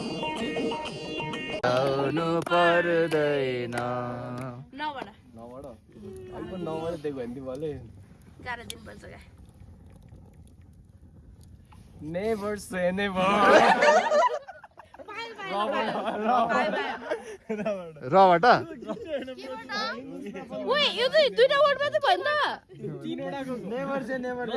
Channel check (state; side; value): identical; both; correlation 1.00